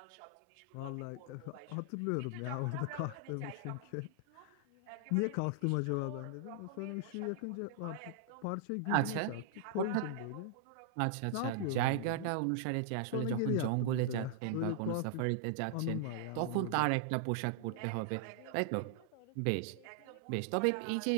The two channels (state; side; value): different; both; correlation -0.01